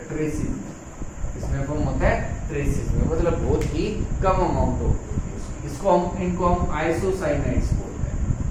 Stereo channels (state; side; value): identical; both; correlation 1.00